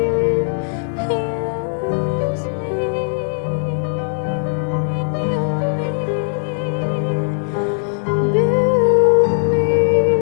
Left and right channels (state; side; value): silent; right; digital silence